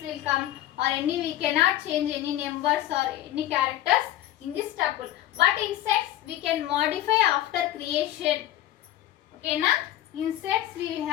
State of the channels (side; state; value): right; quieter; 13.7 dB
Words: will come or any we cannot change any numbers or any characters in this tuple. But in sets we can modify after creation. Okay na? In sets we